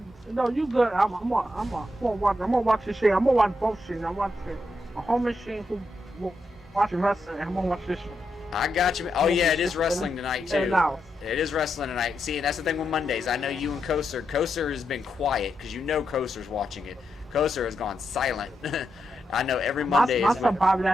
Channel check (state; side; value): normal; both; correlation 0.84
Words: you good? I'm gonna watch this shit. I'm gonna watch both shit. I'm watching a home machine who watching wrestling. I'm gonna watch this shit. I got you. Oh yeah, it is wrestling tonight too. It is wrestling tonight. See, that's the thing with Mondays. I know you and Koser. Koser has been quiet because you know Koser's watching it. Koser has gone silent. I know every Monday. My son Bobby